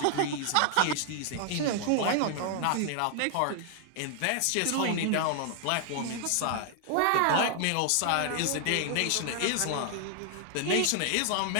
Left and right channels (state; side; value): different; both; correlation 0.00